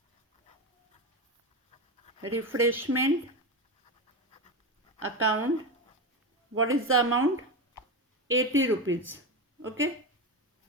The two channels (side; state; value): both; normal; correlation 0.17